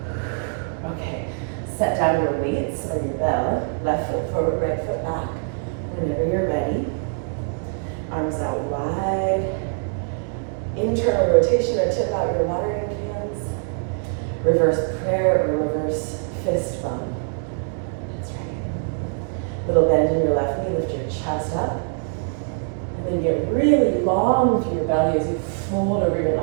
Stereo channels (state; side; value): silent; left; 57 dB below the other